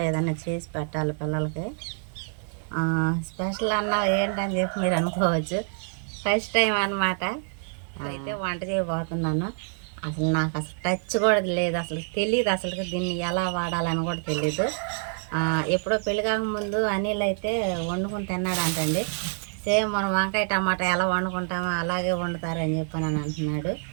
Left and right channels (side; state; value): left; silent; 60 dB below the other